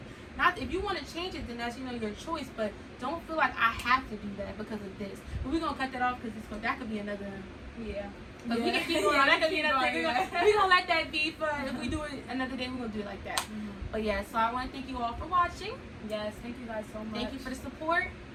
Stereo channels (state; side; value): identical; both; correlation 1.00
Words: Not if you want to change it, then that's, you know, your choice. But don't feel like I have to do that because of this. But we're gonna cut that off because that could be another. Yeah. But we can keep going. That could be another thing. We're gonna let that be. For if we do it another day, we're gonna do it like that. But yeah, so I want to thank you all for watching. Yes, thank you guys so much. Thank you for the support.